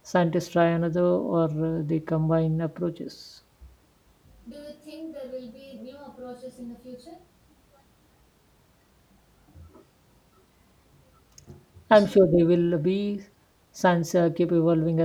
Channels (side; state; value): both; identical; correlation 1.00